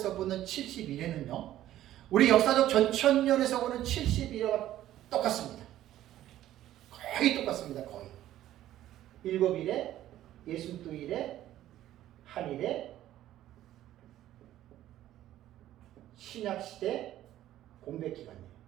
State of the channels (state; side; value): quieter; left; 13.2 dB